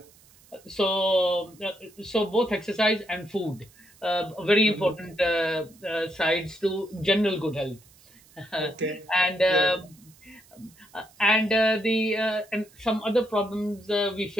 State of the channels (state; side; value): noise; right; hiss, 27 dB below the sound